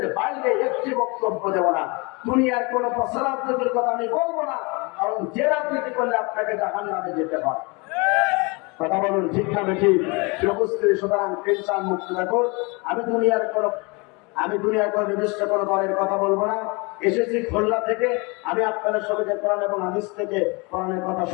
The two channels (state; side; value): quieter; right; 28.6 dB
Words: বাইরে একটি বক্তব্য দেব না। দুনিয়ার কোন প্রচারাত্মকের কথা আমি বলবো না, কারণ যে রাজনীতি করলে আপনাকে জাহান্নামে যেতে হয়। কথা বলুন ঠিক না বেঠিক? উপস্থিতি, সুতরাং টেনশন মুক্ত রাখুন। আমি দুনিয়ার কোন নির্দিষ্ট কোন দলের কথা বলবো না। এসেছি খুলনা থেকে, আমি আপনাদের সবাইকে কোরআন এবং হাদিস থেকে কোরআনের কথা